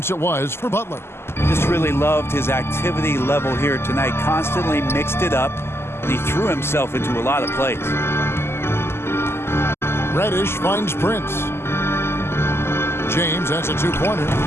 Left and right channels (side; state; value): right; late; 0.12 ms